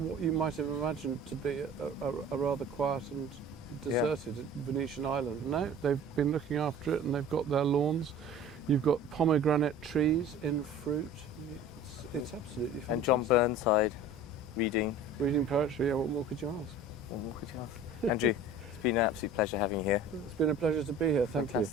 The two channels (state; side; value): normal; both; correlation 0.43